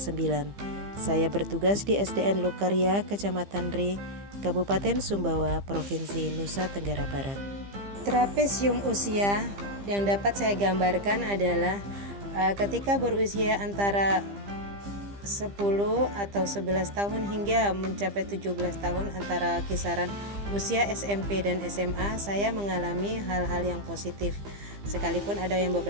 Saya bertugas di SDN Lokarya, Kecamatan Re, Kabupaten Sumbawa, Provinsi Nusa Tenggara Barat. Trapesium usia yang dapat saya gambarkan adalah ketika berusia antara 10 atau 11 tahun hingga mencapai 17 tahun, antara kisaran usia SMP dan SMA, saya mengalami hal-hal yang positif. Sekalipun ada yang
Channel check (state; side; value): late; left; 15 ms